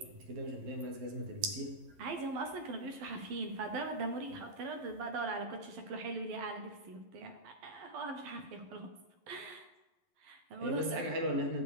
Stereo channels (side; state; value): left; late; 11 ms